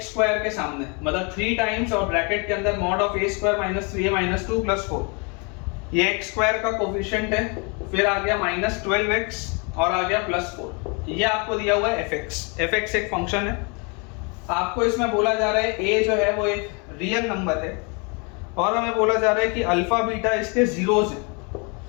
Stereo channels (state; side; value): quieter; right; 33.1 dB